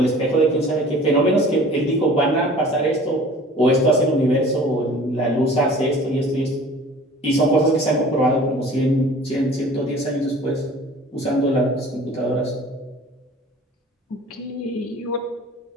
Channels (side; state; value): both; normal; correlation 0.46